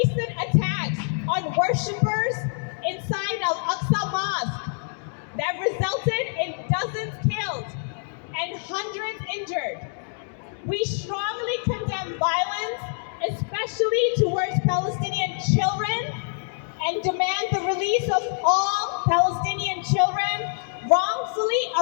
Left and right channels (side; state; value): right; silent; 61 dB below the other